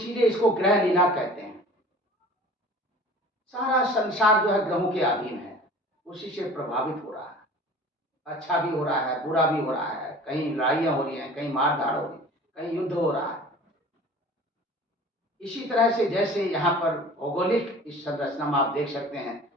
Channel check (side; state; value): both; normal; correlation 0.43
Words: इसको ग्रह लीला कहते हैं। सारा संसार जो है ग्रहों के अधीन है, उसी से प्रभावित हो रहा है। अच्छा भी हो रहा है, बुरा भी हो रहा है, कहीं लड़ाइयाँ हो रही हैं, कहीं मारधाड़ हो रही है, कहीं युद्ध हो रहा है। इसी तरह से जैसे यहाँ पर भौगोलिक इस संरचना में आप देख सकते हैं,